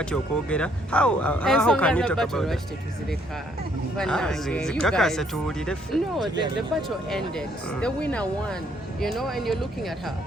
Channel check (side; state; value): both; normal; correlation 0.68